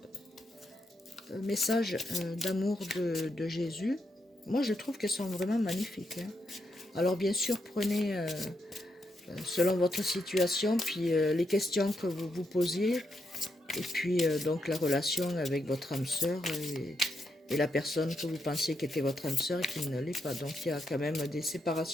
un message d'amour de Jésus. Moi, je trouve qu'elles sont vraiment magnifiques. Hein. Alors, bien sûr, prenez selon votre situation, puis les questions que vous vous posiez, et puis donc la relation avec votre âme sœur et la personne que vous pensiez qui était votre âme sœur et qui ne l'est pas. Donc, il y a quand même des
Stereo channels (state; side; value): normal; both; correlation 0.81